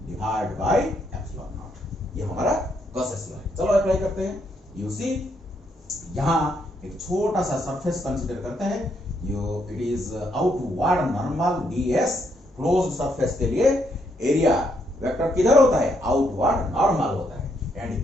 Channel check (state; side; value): normal; both; correlation 0.75